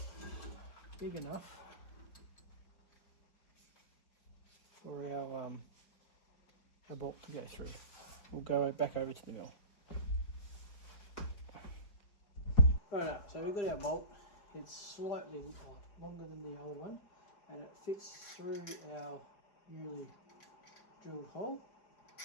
big enough for our bolt to go through. We'll go back over to the mill. Right, so we've got our bolt. It's slightly longer than the old one and it fits through our newly drilled hole.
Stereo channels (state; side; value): late; right; 4.9 ms